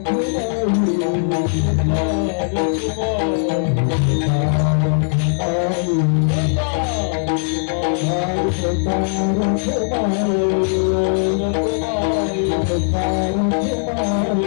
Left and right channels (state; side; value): silent; right; digital silence